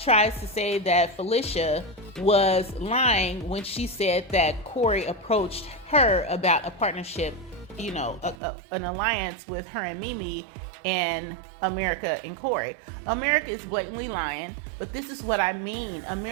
to say that Felicia was lying when she said that Corey approached her about a partnership, an alliance with her and Mimi and America and Corey. America is blatantly lying, but this is what I mean.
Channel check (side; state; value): left; drops out; at 8.3 s